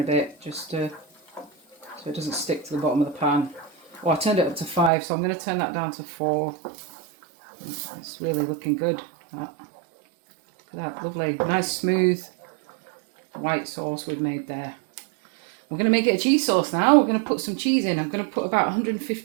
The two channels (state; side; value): drops out; left; at 4.9 s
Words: bit, just so it doesn't stick to the bottom of the pan. Oh, I turned it up to 5, so I'm going to turn that down to 4. It's really looking good. Look at that, lovely, nice smooth white sauce we've made there. We're going to make it a cheese sauce now. We're going to put some cheese in. I'm going to put about